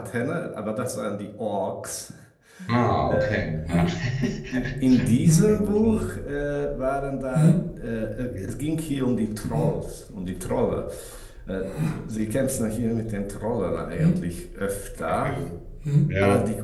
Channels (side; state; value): both; identical; correlation 1.00